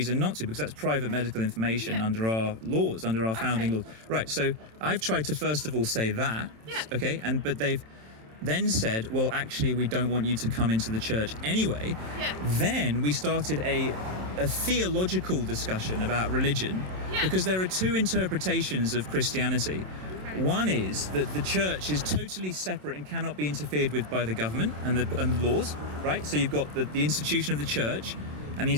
not to, because that's private medical information under our laws, under our founding laws. Right, so I've tried to first of all say that, okay, but they've then said, well, actually, we don't want you to come into the church anyway. Then we started a theological discussion about religion, because there are two interpretations of Christianity. One is that the church is totally separate and cannot be interfered with by the government and the laws, right? So you've got the institution of the church and the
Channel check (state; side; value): late; left; 27 ms